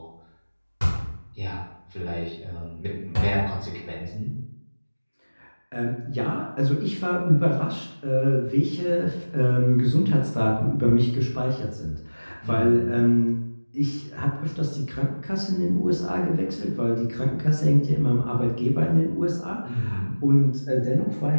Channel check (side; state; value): both; inverted; correlation -1.00